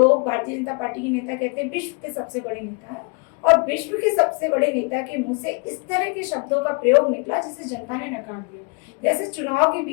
भारतीय जनता पार्टी के नेता कहते हैं, विश्व के सबसे बड़े नेता है, और विश्व के सबसे बड़े नेता के मुंह से इस तरह के शब्दों का प्रयोग निकला जिसे जनता ने नकार दिया। जैसे चुनाव के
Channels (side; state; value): right; quieter; 34.2 dB